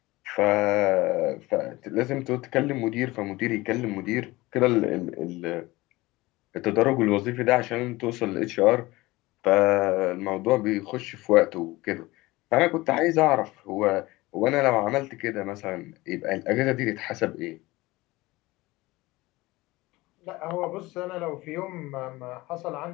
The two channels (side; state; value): right; quieter; 20.2 dB